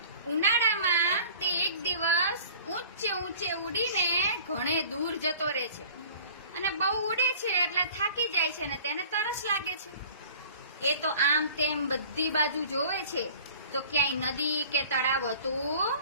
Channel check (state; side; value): inverted; both; correlation -0.46